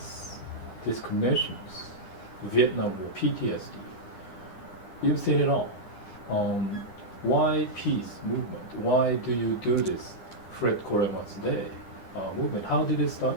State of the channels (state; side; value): late; right; 9.9 ms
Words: discriminations, Vietnam War, PTSD. You've seen it all. Why peace movement? Why do you do this Fred Korema's Day movement? How did it start?